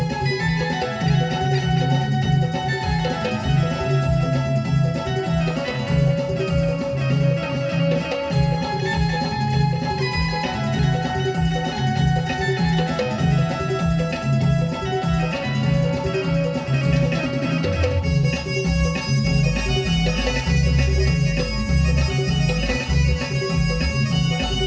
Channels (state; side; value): identical; both; correlation 1.00